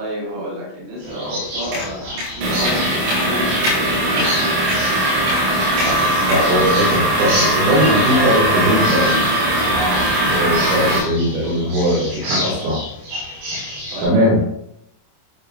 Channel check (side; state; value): left; late; 27 ms